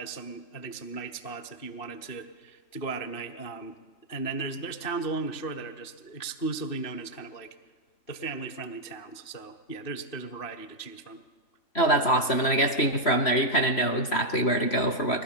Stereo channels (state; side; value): late; right; 3.1 ms